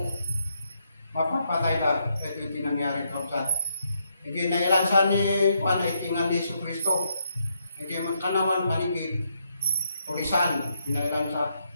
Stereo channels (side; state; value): both; inverted; correlation -0.77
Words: mapapatay na. Ito yung tinangyari kapsat. Hindi nailansa ni Juan ay tingan ni Jesus Cristo. Hindi magkanawan manigid, pulisan, nailansa.